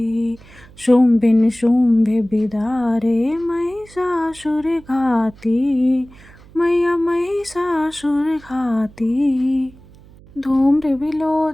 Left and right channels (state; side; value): noise; right; hum, 23 dB below the sound